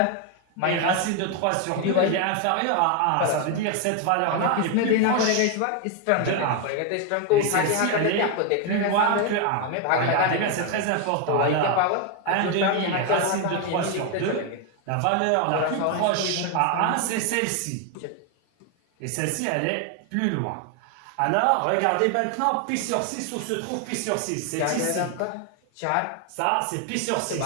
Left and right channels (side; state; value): both; different; correlation 0.01